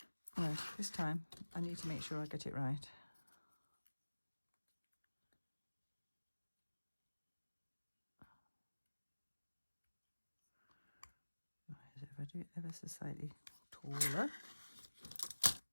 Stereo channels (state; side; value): inverted; both; correlation -1.00